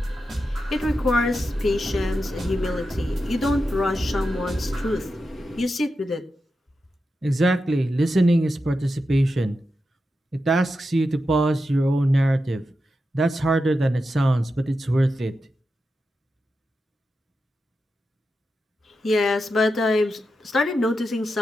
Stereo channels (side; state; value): both; normal; correlation 0.89